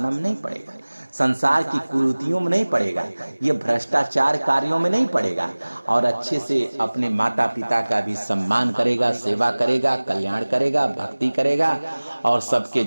में नहीं पड़ेगा, संसार की कुरीतियों में नहीं पड़ेगा, ये भ्रष्टाचार कार्यों में नहीं पड़ेगा, और अच्छे से अपने माता पिता का भी सम्मान करेगा, सेवा करेगा, कल्याण करेगा, भक्ति करेगा, और सबके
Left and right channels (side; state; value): both; inverted; correlation -1.00